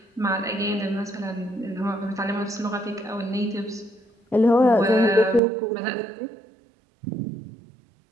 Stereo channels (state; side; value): drops out; left; at 5.4 s